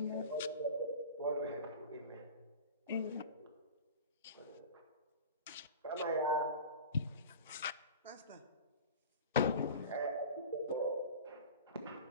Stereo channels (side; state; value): both; inverted; correlation -0.35